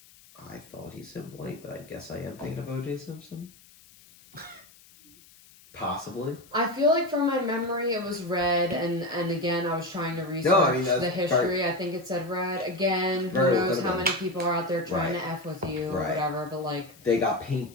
I thought he said white, but I guess I am thinking of O.J. Simpson. Possibly. I feel like from my memory it was red, and again I was trying to research No, I mean, that's the history. I think it said red. Again, who Very knows could've how been. many people are out there trying Right. to F with you or Right. whatever, but like, They got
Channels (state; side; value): noise; left; hiss, 25 dB below the sound